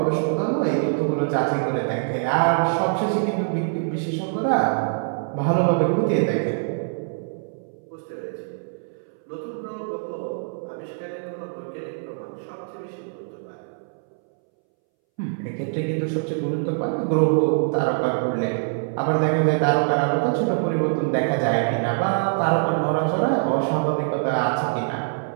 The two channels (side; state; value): left; silent; 63 dB below the other